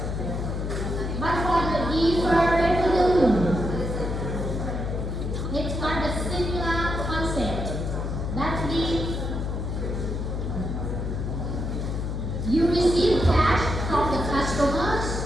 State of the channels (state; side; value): noise; left; hum, 3 dB below the sound